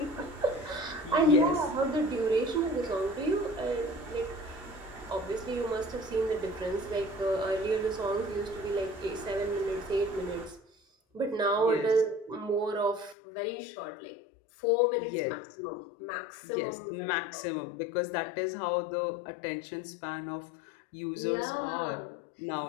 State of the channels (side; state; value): right; drops out; at 13.2 s